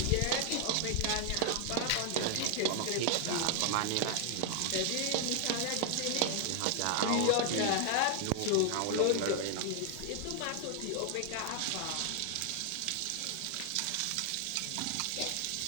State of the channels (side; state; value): both; different; correlation 0.00